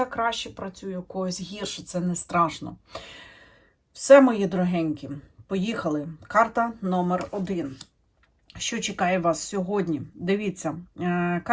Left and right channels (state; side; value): identical; both; correlation 1.00